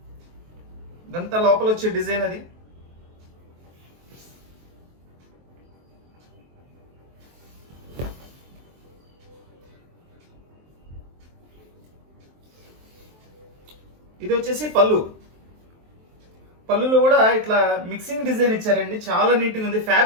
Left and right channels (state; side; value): late; left; 23 ms